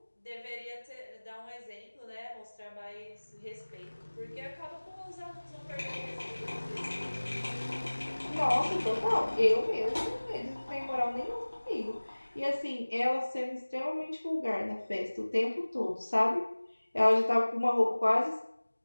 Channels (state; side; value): inverted; both; correlation -1.00